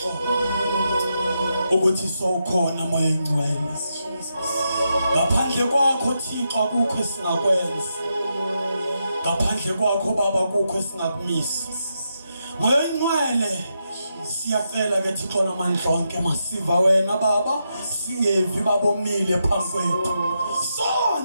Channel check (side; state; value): both; inverted; correlation -0.84